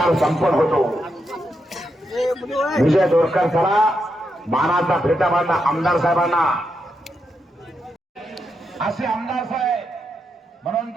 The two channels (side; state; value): both; normal; correlation 0.83